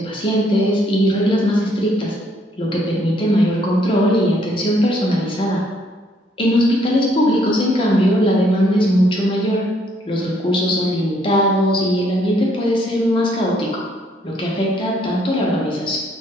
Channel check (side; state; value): both; normal; correlation 0.68